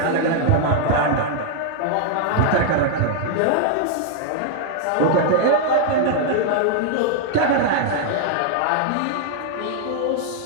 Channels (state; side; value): different; both; correlation -0.01